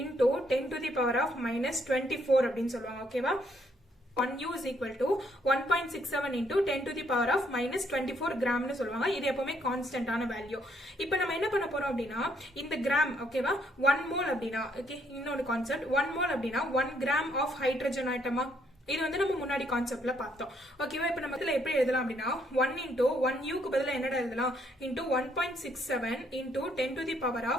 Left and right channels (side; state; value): both; normal; correlation 0.71